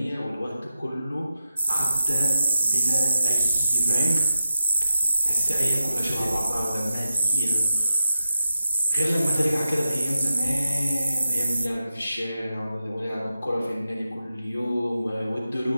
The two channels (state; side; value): inverted; both; correlation -0.89